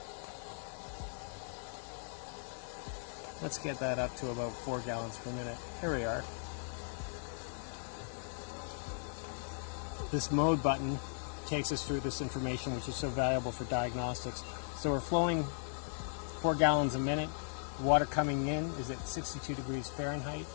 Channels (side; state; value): right; silent; digital silence